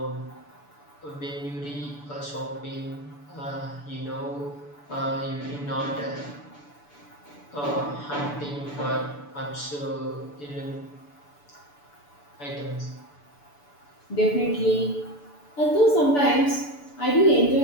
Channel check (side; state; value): right; late; 6.9 ms